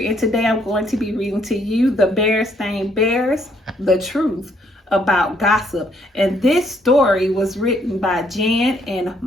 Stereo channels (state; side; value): normal; both; correlation 0.69